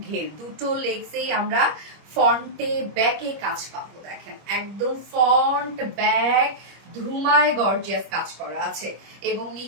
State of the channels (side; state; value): left; late; 25 ms